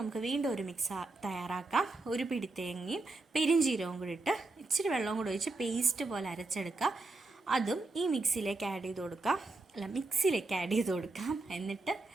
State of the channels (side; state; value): left; quieter; 3.3 dB